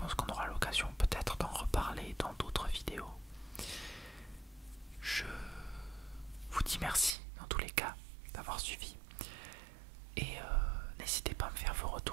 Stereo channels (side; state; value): left; drops out; at 7.2 s